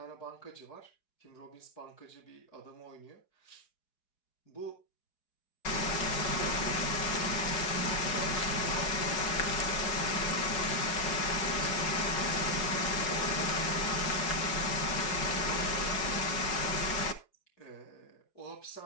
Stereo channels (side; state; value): right; late; 4.8 ms